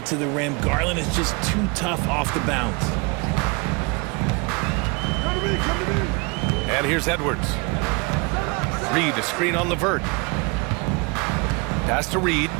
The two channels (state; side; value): quieter; left; 29.3 dB